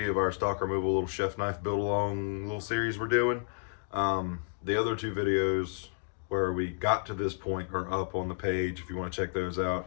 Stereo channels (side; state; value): right; silent; digital silence